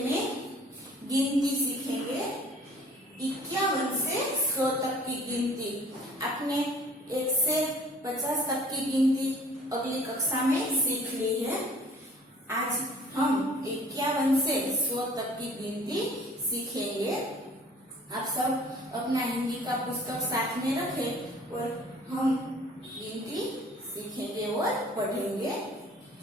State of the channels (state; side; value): normal; both; correlation 0.52